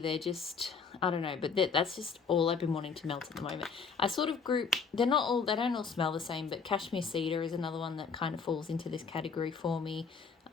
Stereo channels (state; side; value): quieter; right; 5.6 dB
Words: just, I don't know, but that's just all I've been wanting to melt at the moment. I sort of group, they don't all smell the same, but cashmere cedar is another one that kind of falls into this category for me.